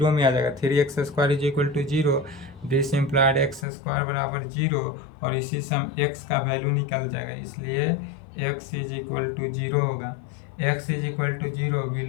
में आ जाएगा। 3x² is equal to 0। This implied x² बराबर 0 और इसी से हम x का वैल्यू निकल जाएगा, इसलिए x इज इक्वल टू 0 होगा। x is equal to 0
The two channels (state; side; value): drops out; right; at 3.7 s